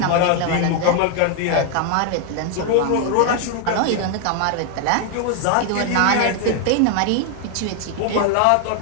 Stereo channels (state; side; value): different; both; correlation 0.00